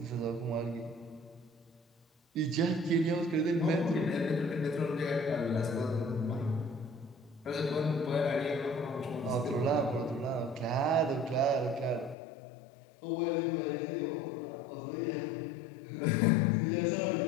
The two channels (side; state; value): right; drops out; at 12.2 s